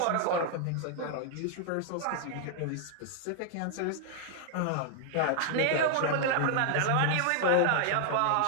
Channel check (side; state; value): both; different; correlation 0.00